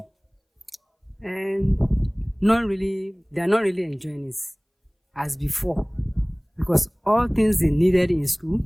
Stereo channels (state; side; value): identical; both; correlation 1.00